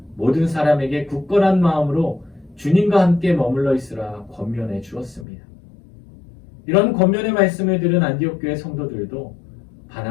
모든 사람에게 굳건한 마음으로 주님과 함께 머물러 있으라 권면해 주었습니다. 이런 권면의 말씀을 들은 안디옥 교회 성도들도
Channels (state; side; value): drops out; right; at 5.2 s